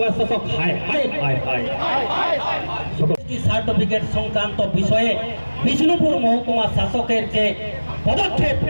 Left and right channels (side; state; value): both; inverted; correlation -1.00